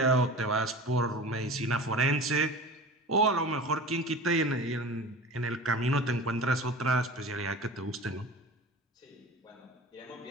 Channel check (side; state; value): both; normal; correlation 0.36